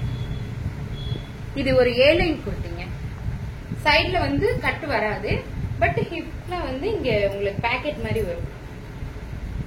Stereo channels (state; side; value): identical; both; correlation 1.00